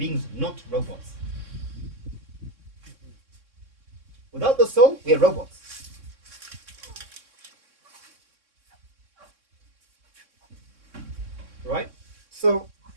not robots. Without the soul, we are robots. Right? So,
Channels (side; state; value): left; late; 3.6 ms